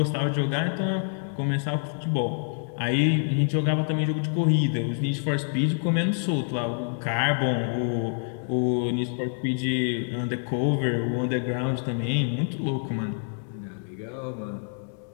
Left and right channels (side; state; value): right; silent; digital silence